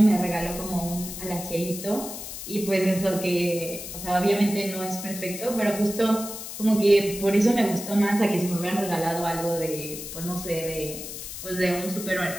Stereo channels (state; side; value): noise; left; hiss, 9 dB below the sound